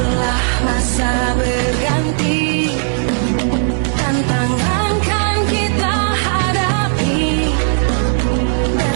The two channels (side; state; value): left; silent; 57 dB below the other